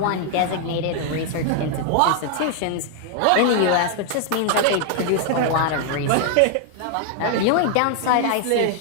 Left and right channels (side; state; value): both; different; correlation 0.00